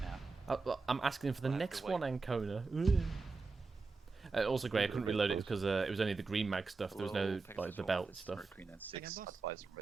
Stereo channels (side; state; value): left; quieter; 4.1 dB